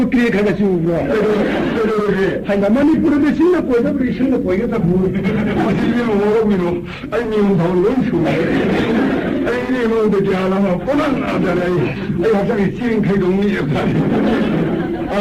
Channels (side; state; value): both; identical; correlation 1.00